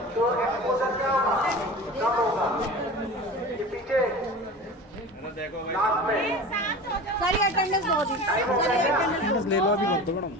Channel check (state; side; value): normal; both; correlation 0.34